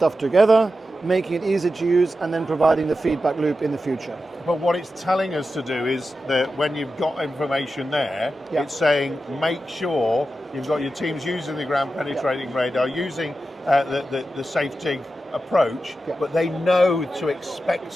together, making it easy to use, and then providing the feedback loop in the future. But what it's telling us to do is that when you've got information there, it's saying make sure you've got your teams using the ground penetrating radar, using the safe dig approach, but they know to expect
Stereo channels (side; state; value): both; normal; correlation 0.91